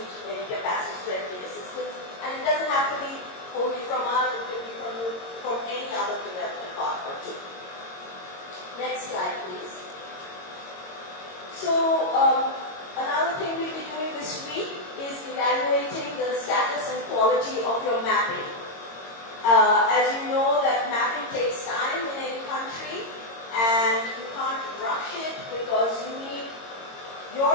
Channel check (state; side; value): late; right; 22 ms